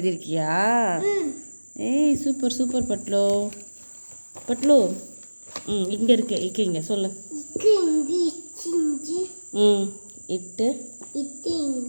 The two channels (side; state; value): both; inverted; correlation -1.00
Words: ஏய் சூப்பர் பட்லு. இங்க இருக்கு சொல்லு. இட்டு